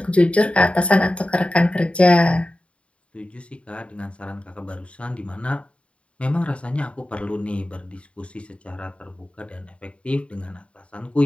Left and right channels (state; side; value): late; right; 0.060 ms